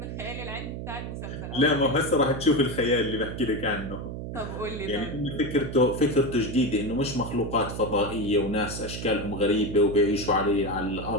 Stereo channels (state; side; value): noise; right; hum, 7 dB below the sound